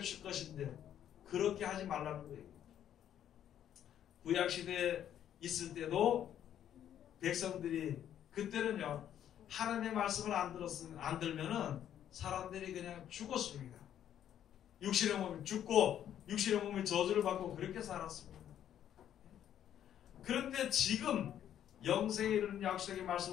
줄 것인데 그렇게 하지 말라는 거예요. 구약시대에 있을 때도 백성들이 그때는요 하나님의 말씀을 안 들면은 사람들이 그냥 죽었습니다. 육신의 몸이 죽고 육신의 몸이 저주를 받고 그렇게 살았습니다. 그런데 지금 영생에 이르는 약속의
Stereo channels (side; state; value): right; quieter; 10.4 dB